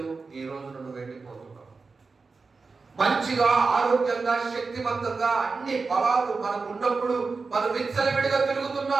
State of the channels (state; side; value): quieter; left; 4.4 dB